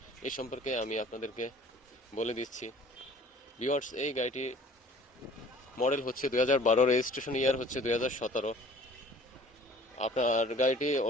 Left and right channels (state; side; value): normal; both; correlation 0.50